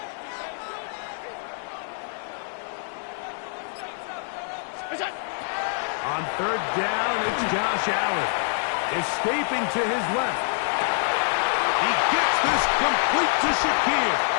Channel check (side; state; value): right; silent; 61 dB below the other